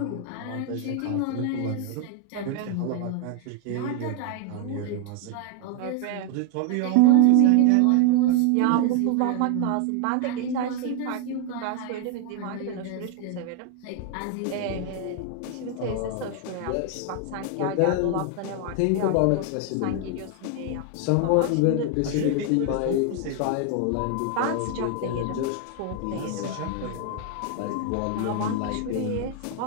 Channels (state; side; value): different; both; correlation 0.00